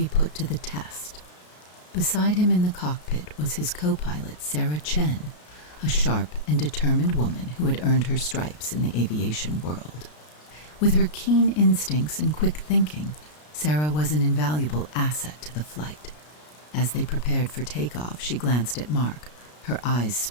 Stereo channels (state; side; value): late; right; 33 ms